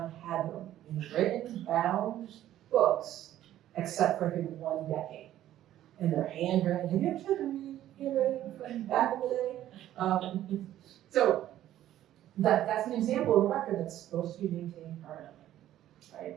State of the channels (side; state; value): left; quieter; 12.8 dB